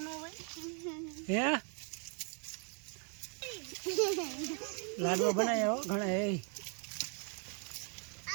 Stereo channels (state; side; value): quieter; left; 39.4 dB